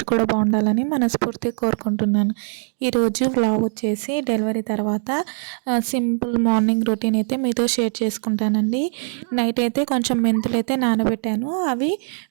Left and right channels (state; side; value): silent; left; digital silence